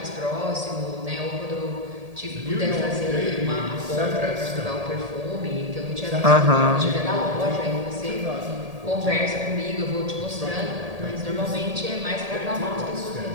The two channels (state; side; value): late; left; 1.8 ms